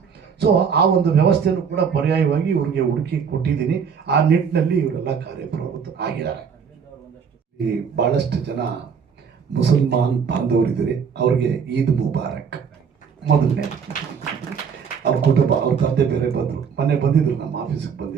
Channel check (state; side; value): quieter; left; 6.6 dB